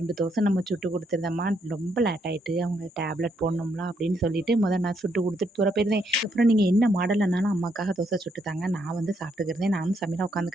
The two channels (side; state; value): both; normal; correlation 0.75